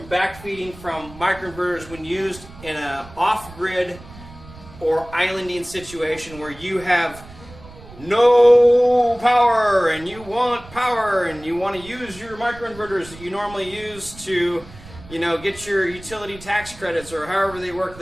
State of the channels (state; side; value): noise; right; rumble, 19 dB below the sound